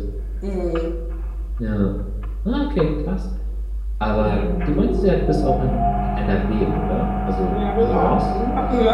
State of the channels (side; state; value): both; identical; correlation 1.00